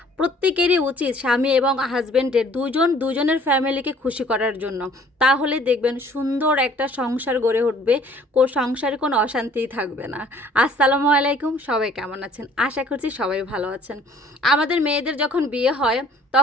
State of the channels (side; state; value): both; normal; correlation 0.56